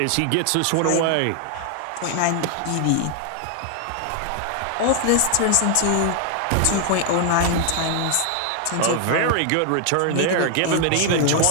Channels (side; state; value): both; different; correlation 0.00